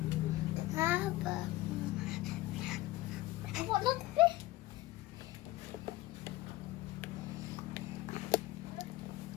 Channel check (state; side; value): quieter; right; 17.1 dB